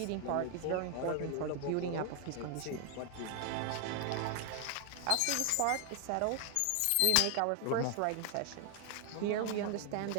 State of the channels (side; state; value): both; different; correlation 0.00